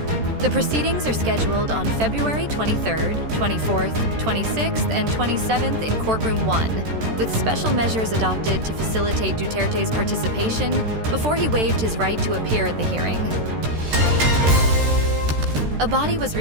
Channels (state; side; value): late; left; 13 ms